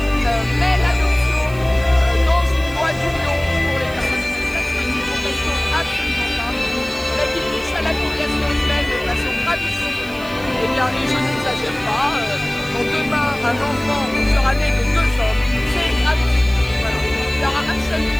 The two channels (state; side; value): noise; right; hiss, 20 dB below the sound